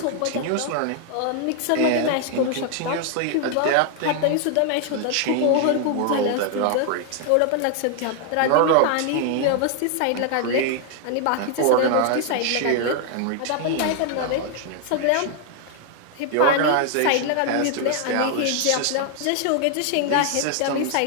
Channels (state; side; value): different; both; correlation 0.00